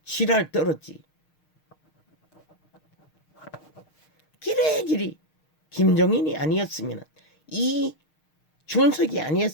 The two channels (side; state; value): right; late; 6.5 ms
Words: 지랄 떨었지. 기레기리 김종인이 아니었으면 이 준석이